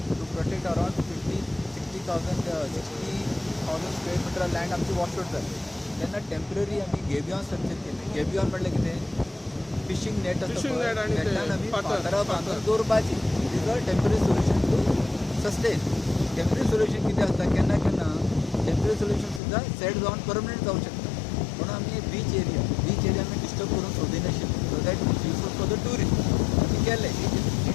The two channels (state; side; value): drops out; right; at 19.4 s